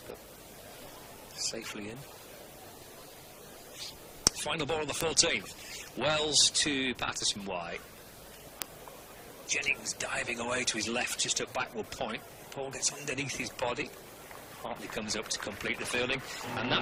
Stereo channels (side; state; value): both; identical; correlation 1.00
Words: safely in. Final ball of the 14th. Wells to Patterson-White. Jennings diving away to his left just at backward point. Paul gets underneath his body. Hartley comes up to complete the fielding, and